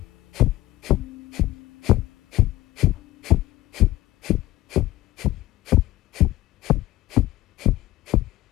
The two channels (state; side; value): quieter; right; 16.5 dB